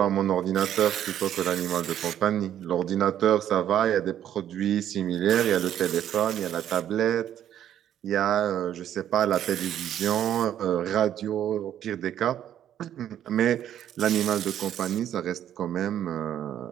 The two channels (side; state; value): left; quieter; 10.7 dB